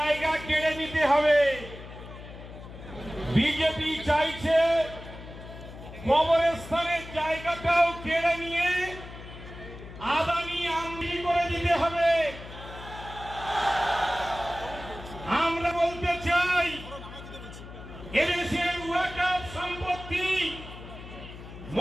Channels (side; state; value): left; noise; hum, 14 dB below the sound